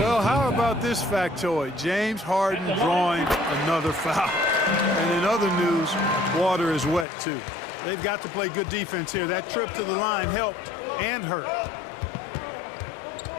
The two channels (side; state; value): right; drops out; at 7.1 s